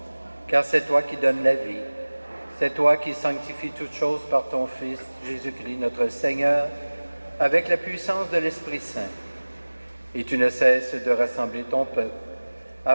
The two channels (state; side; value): inverted; both; correlation -1.00